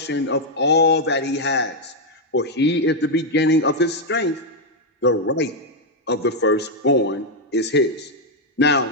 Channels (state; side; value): normal; both; correlation 0.00